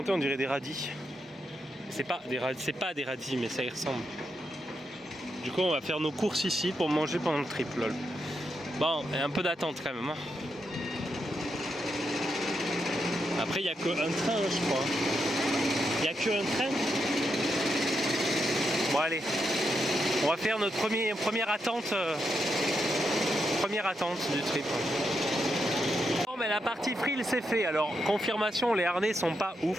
On dirait des radis. C'est pas des radis, mais ça y ressemble. Du coup, on va faire nos courses ici pour manger pendant le trip, lol. Bon, et un peu d'attente quand même. Hein. Après, il n'y a qu'un train, je crois. Il n'y a qu'un train. Bon, allez. On va faire notre première attente du trip. Bon, mais la partie frill, c'est fait. Alors, confirmation, les harnais sont pas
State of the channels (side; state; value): both; normal; correlation 0.83